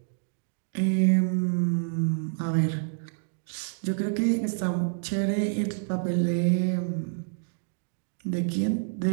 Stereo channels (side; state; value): left; silent; 59 dB below the other